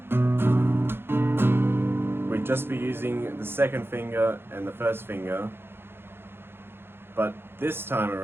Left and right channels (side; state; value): left; late; 0.11 ms